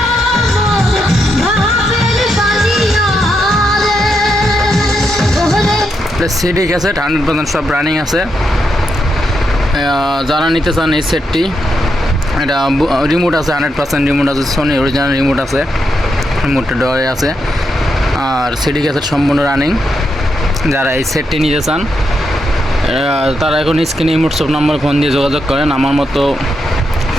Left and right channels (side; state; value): both; normal; correlation 0.82